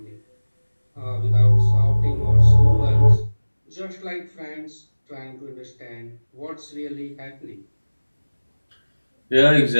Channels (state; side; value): inverted; both; correlation -1.00